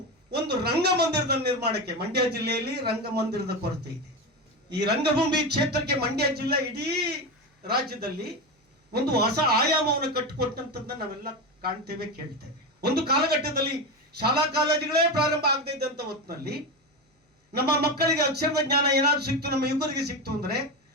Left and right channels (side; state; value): both; normal; correlation 0.17